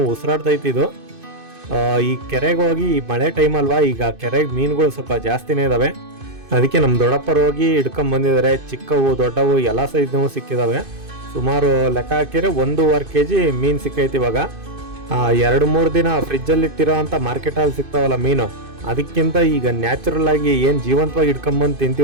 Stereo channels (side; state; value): left; late; 2.5 ms